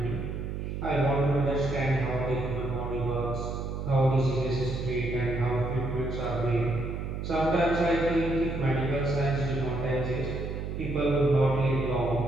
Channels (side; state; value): right; noise; hum, 5 dB below the sound